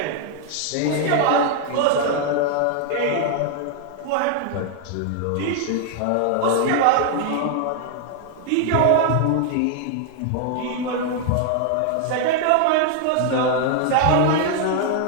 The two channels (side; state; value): both; different; correlation 0.00